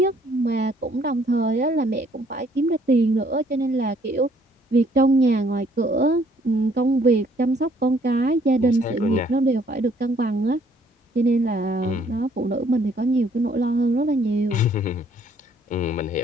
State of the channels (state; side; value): normal; both; correlation 0.63